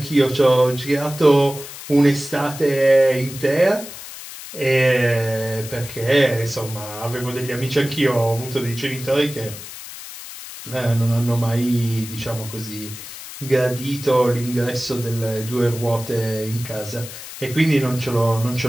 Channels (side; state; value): left; noise; hiss, 13 dB below the sound